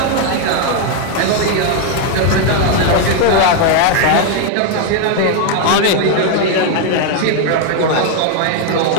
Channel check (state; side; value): different; both; correlation 0.01